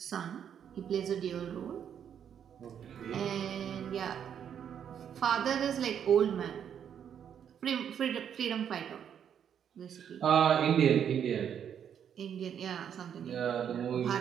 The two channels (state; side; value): quieter; left; 8.6 dB